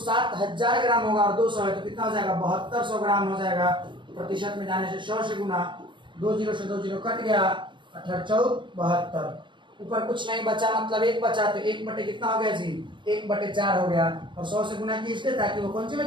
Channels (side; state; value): left; late; 0.23 ms